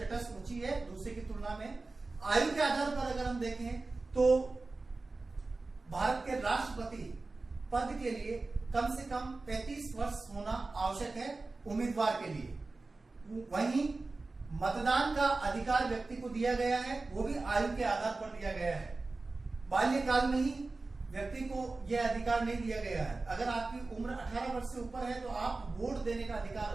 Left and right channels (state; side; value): quieter; left; 3.5 dB